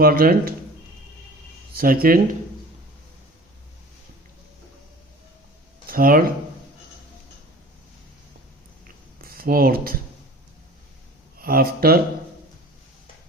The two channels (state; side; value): normal; both; correlation 0.42